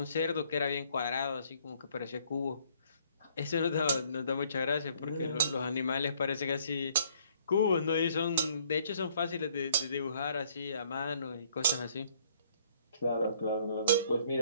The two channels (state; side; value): inverted; both; correlation -0.63